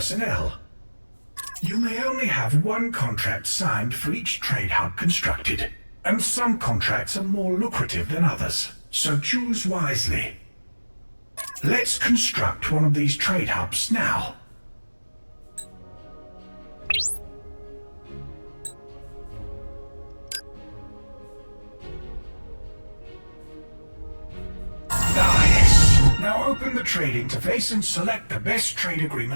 You may only have one contract signed for each trade hub constructed, and some contracts are more lucrative than others, so choose wisely. Let's construct one of these trade hubs now. Nice! Now open the trade interface and select the best trade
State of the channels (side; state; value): both; inverted; correlation -1.00